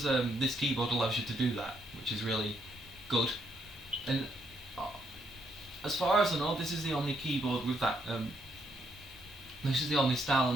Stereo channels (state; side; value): normal; both; correlation 0.74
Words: this keyboard allows you to do that, which is really good. And as far as I know, this is the only keyboard with that. This is the only style